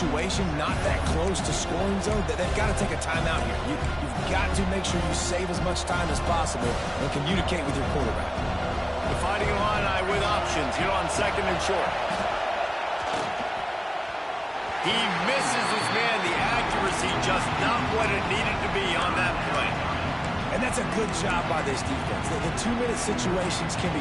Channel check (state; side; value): identical; both; correlation 1.00